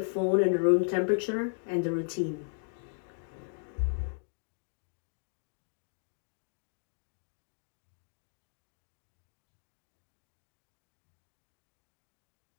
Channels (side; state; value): right; silent; digital silence